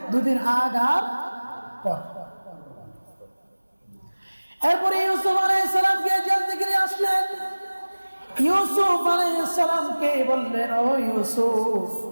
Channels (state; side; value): inverted; both; correlation -1.00